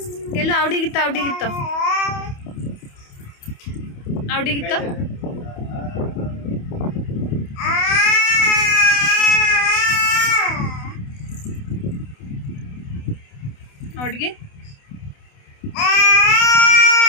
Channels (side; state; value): right; late; 28 ms